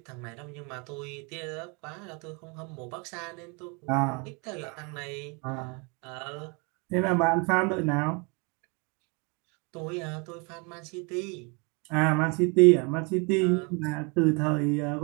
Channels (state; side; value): quieter; left; 31.9 dB